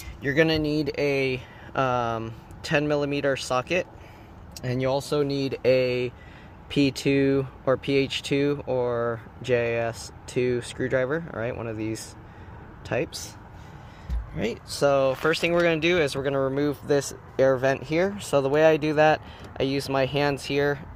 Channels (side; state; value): both; identical; correlation 1.00